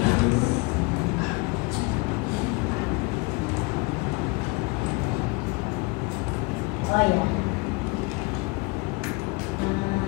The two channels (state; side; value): quieter; right; 27.3 dB